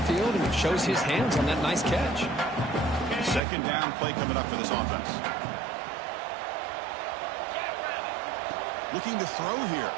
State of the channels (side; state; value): left; drops out; at 3.4 s